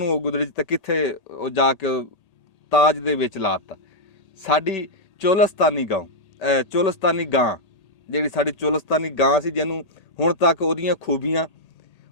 ਉਹ ਗੁਦੜੀ 'ਚ ਤੇ ਕਿੱਥੇ ਉਹ ਜਾ ਕੇ ਤਾਜ ਦੇ ਵਿੱਚ ਲਾਤਾ। ਸਾਡੀ ਚੋਲਸਤਾਨੀ ਗਾਂ ਜਿਹੜੀ ਸਾਡੀ ਚੋਲਸਤਾਨੀ ਗਾਂ ਸੀ, ਜਿਹਨੂੰ ਹੁਣ ਤੱਕ ਉਹਦੀਆਂ ਖੂਬੀਆਂ,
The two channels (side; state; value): right; late; 1.8 ms